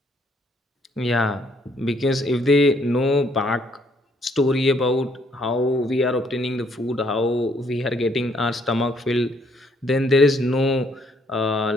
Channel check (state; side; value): normal; both; correlation 0.68